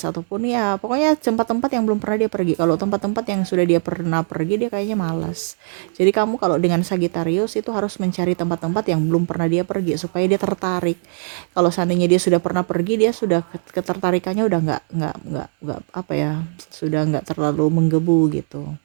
ataupun ya pokoknya tempat-tempat yang belum pernah dia pergi. Kalau tempat-tempat yang sudah dia pernah pergi dia kayaknya malas. Jadi kamu kalau dengan Sagittarius itu harus mencari tempat-tempat yang belum pernah dia pergi supaya dia tertarik. Kalau seandainya dia sudah pernah pergi, dia sudah ketertarikannya udah nggak apa ya, sudah nggak terlalu menggebu gitu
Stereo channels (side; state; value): left; silent; digital silence